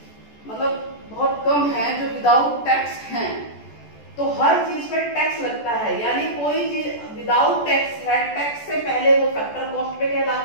मतलब बहुत कम है जो विदाउट टैक्स हैं। तो हर चीज पे टैक्स लगता है, यानी कोई चीज विदाउट टैक्स है, टैक्स से पहले वो फैक्टर कॉस्ट पे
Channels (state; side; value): late; right; 14 ms